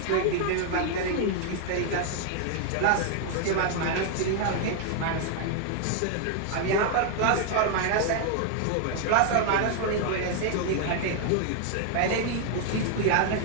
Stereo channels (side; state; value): both; different; correlation 0.00